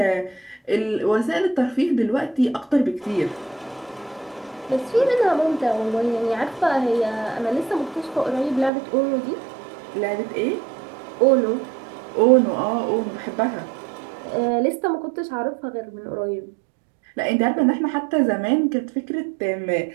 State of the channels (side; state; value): left; drops out; at 8.7 s